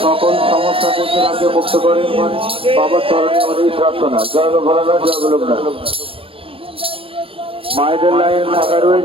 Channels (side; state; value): left; late; 0.27 ms